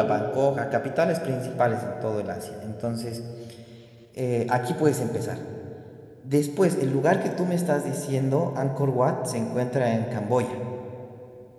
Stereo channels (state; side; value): identical; both; correlation 1.00